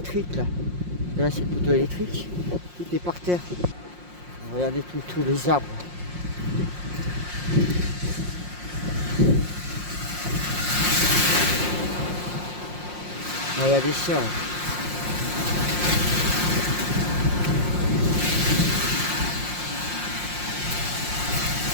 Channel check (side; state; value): left; late; 5.6 ms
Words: là. Et là c'est le poteau électrique. Tout est par terre. Regardez tous les arbres. Regardez ça.